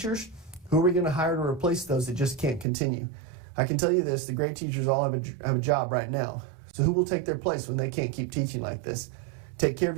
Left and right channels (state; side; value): drops out; left; at 2.7 s